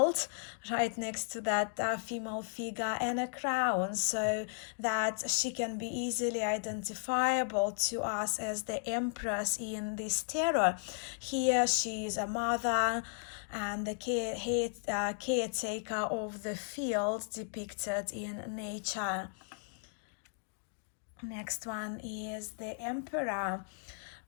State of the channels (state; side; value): silent; right; digital silence